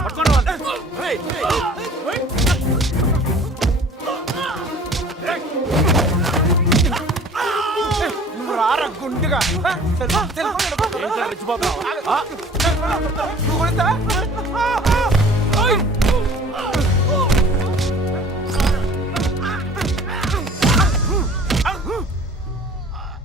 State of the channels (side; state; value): both; normal; correlation 0.48